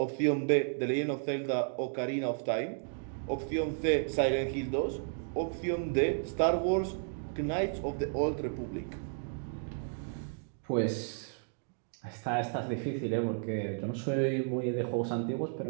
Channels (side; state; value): left; silent; digital silence